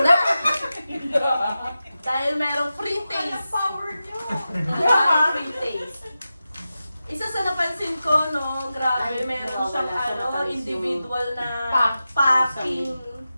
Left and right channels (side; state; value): both; inverted; correlation -0.93